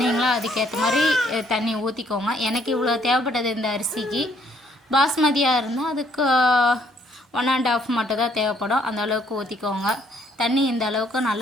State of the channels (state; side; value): normal; both; correlation 0.66